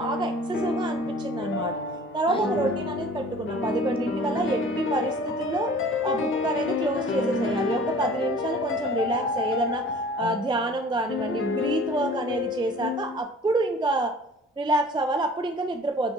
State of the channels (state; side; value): normal; both; correlation 0.47